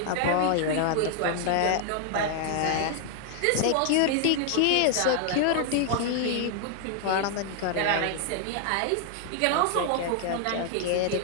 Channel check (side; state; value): both; different; correlation 0.00